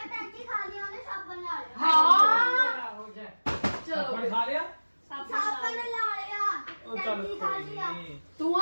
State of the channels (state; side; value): inverted; both; correlation -1.00